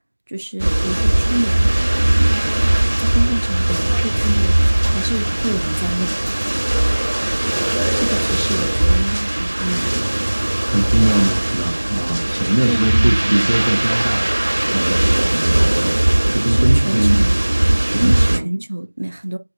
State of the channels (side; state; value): both; inverted; correlation -1.00